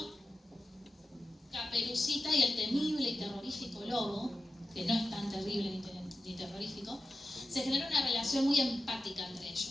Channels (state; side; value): normal; both; correlation 0.93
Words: Caperucita y el temible y terrorífico lobo, que no es tan terrible ni terrorífico. Se genera una relación muy empática entre